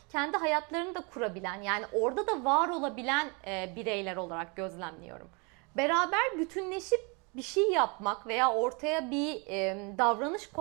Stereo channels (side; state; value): left; quieter; 31.6 dB